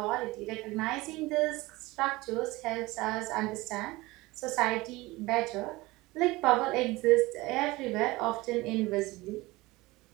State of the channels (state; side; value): quieter; left; 20.8 dB